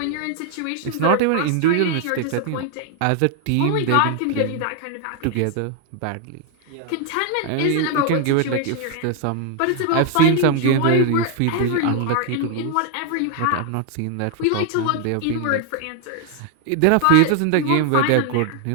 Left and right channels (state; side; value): different; both; correlation 0.00